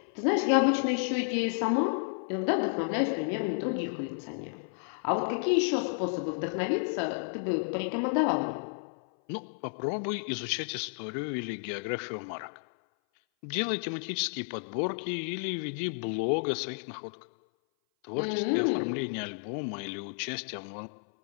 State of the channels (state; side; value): silent; right; 57 dB below the other